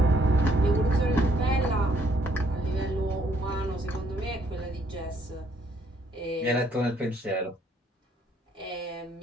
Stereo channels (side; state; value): both; normal; correlation 0.68